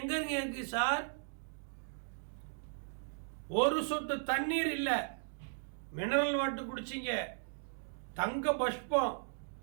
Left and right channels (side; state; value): left; silent; digital silence